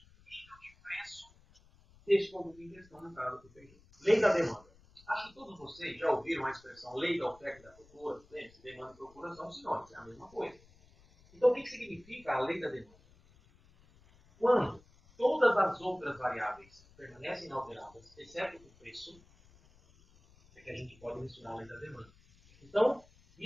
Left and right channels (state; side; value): noise; left; rumble, 27 dB below the sound